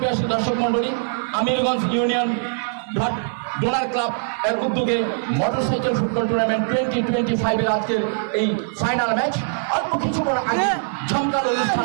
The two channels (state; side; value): silent; left; digital silence